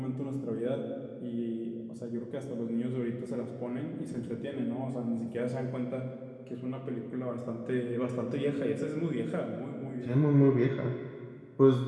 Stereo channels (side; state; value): both; identical; correlation 1.00